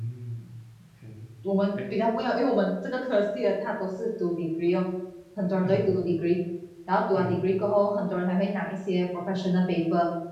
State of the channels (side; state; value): both; identical; correlation 1.00